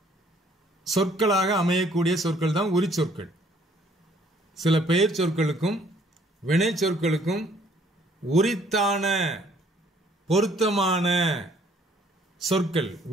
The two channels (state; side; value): normal; both; correlation 0.61